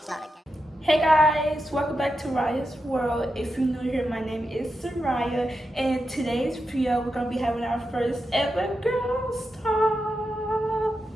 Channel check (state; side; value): normal; both; correlation 0.88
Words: Hey guys, welcome back to Ryah's World. If you're new here, my name is Ryah, and in today's video we're gonna be having our first ever girls talk.